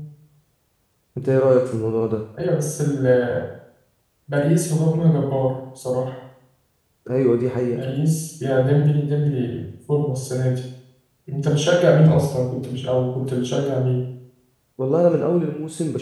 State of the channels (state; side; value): identical; both; correlation 1.00